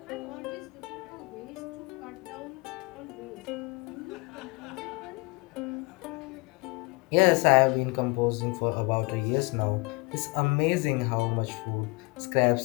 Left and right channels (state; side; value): quieter; right; 26.4 dB